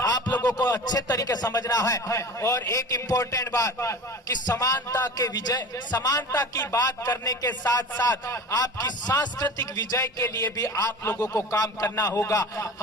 आप लोगों को अच्छे तरीके समझना है। और एक इंपॉर्टेंट बात कि समानता की बात करने के साथ साथ आपकी सांस्कृतिक विजय के लिए भी आप लोगों को काम करना होगा।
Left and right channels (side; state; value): both; normal; correlation 0.36